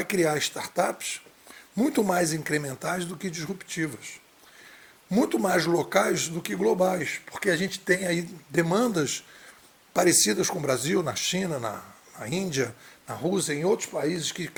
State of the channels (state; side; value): identical; both; correlation 1.00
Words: criar startups muito mais incrementais do que disruptivas, muito mais locais do que globais, porque a gente tem aí demandas parecidas com o Brasil, na China, na Índia, na Rússia, em outros países que